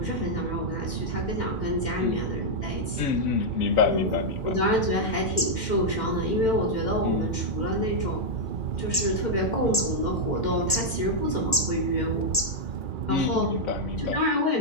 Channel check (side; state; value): both; normal; correlation -0.04